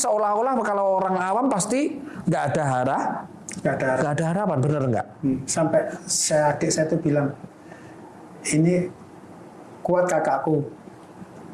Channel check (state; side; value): identical; both; correlation 1.00